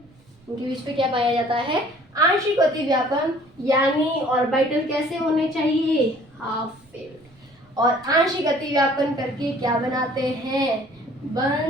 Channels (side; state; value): right; noise; rumble, 30 dB below the sound